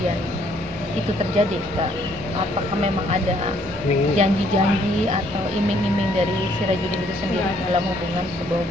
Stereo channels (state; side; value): normal; both; correlation 0.66